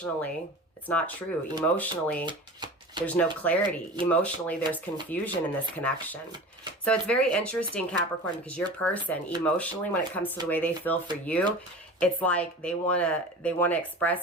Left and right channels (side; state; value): both; normal; correlation 0.36